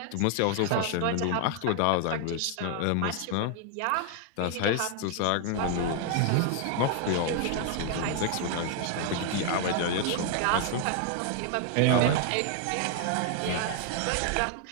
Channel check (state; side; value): different; both; correlation 0.00